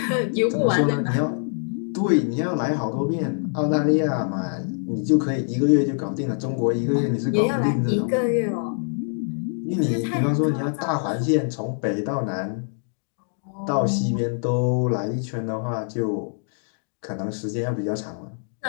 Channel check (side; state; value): right; silent; digital silence